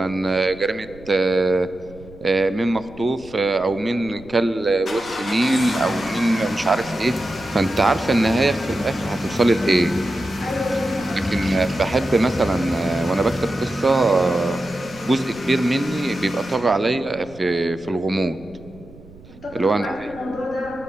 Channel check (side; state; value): right; noise; rumble, 21 dB below the sound